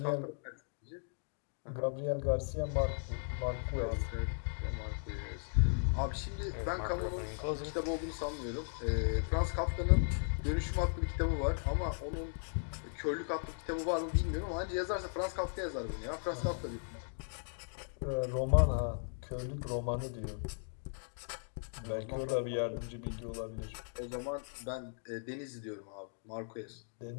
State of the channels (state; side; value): silent; right; digital silence